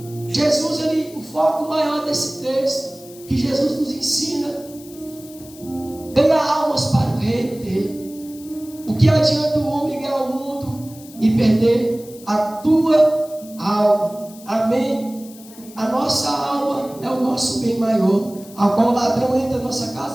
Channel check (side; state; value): left; noise; hiss, 20 dB below the sound